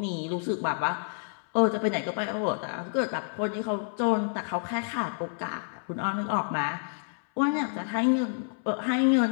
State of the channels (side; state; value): right; silent; 59 dB below the other